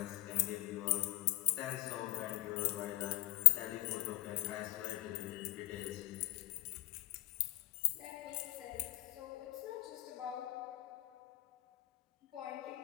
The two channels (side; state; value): right; quieter; 18.4 dB